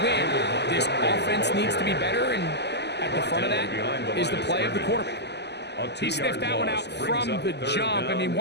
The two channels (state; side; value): late; right; 0.50 ms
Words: win, this offense needs to be better, and at the front of that is the play of the quarterback. He sniffed that one out from the jump. I mean,